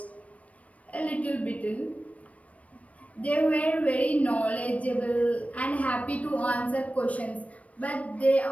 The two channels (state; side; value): late; right; 0.066 ms